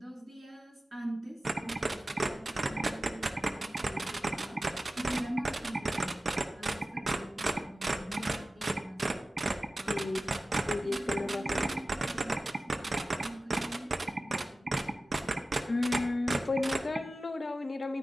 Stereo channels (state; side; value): normal; both; correlation 0.95